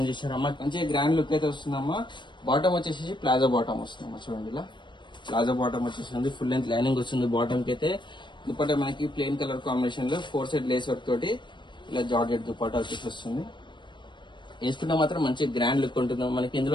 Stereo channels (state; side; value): late; right; 0.22 ms